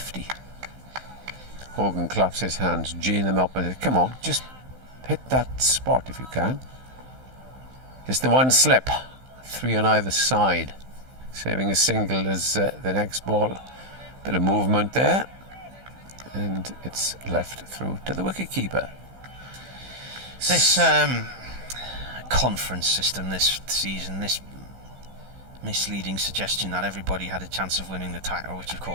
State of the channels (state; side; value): late; left; 15 ms